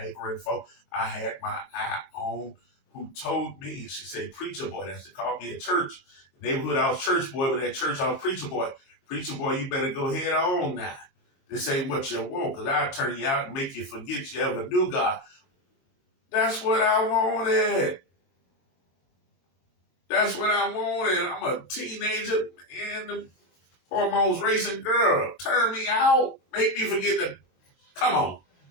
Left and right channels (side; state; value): right; late; 22 ms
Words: for. I had my eye on, who told me, she said, preacher boy. That's what they called me at church. The neighborhood, I was church boy, but at church, I was preacher boy. Preacher boy, you better go head on now. This ain't what you want, because I'll turn you out and make you forget you ever knew God. That's what I wanted. That's what I wanted. I'm a teenager and the hormones racing girl. Turn me out. Make me forget to, come on.